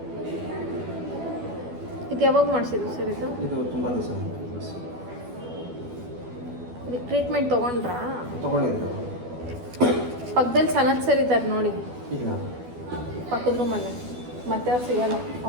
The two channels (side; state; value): left; late; 12 ms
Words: ಇದು ಯಾವಾಗ ಮಾಡಿಸಿದ್ದು ಸರ್ ಇದು? ಇದು ತುಂಬ ದಿವಸ ಇದಕ್ಕೆ ಟ್ರೀಟ್ಮೆಂಟ್ ತೊಗೊಂಡ್ರಾ? ತೊಗೊಂಡಿದ್ರು. ಪಕ್ಕದಲ್ಲಿ ಸನತ್ ಸರ್ ಇದ್ದಾರೆ ನೋಡಿ, ಇಲ್ಲ ಪಕ್ಕದ ರೂಮಲ್ಲೇ. ಮತ್ತೆ ಅವ್ರು ಸಿಗಲ್ಲ,